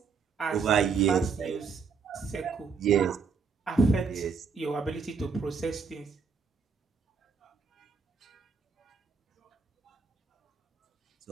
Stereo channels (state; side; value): quieter; left; 5.4 dB